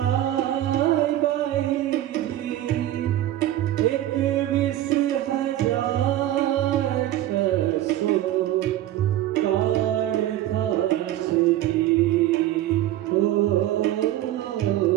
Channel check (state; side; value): quieter; left; 13.5 dB